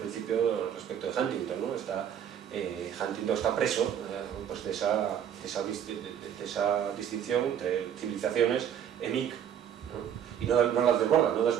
principio respecto de Huntington, ¿no? Huntington está preso pues de esa distinción entre civilizaciones EMIC, ¿no? Y no las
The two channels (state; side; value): quieter; left; 9.1 dB